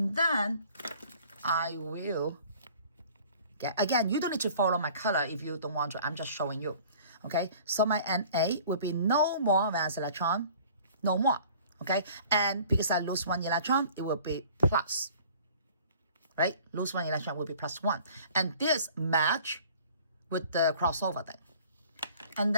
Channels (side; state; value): both; inverted; correlation -0.50